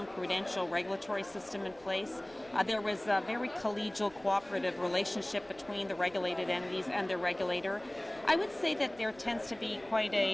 prudential regulatory system in place. There was a very collegial, cooperative relationship between the regulated entities and their regulator. I would say that there tends to be quite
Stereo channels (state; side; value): noise; right; rumble, 26 dB below the sound